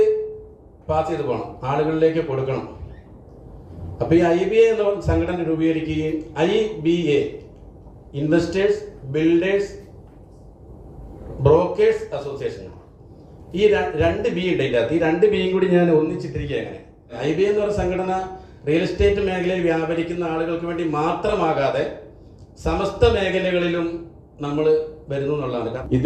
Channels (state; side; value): identical; both; correlation 1.00